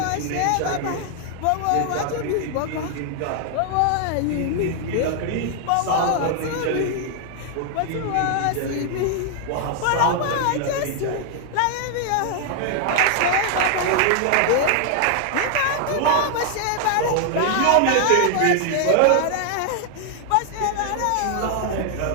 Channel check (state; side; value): different; both; correlation 0.00